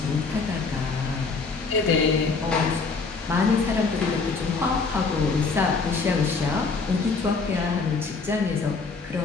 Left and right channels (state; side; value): quieter; right; 4.4 dB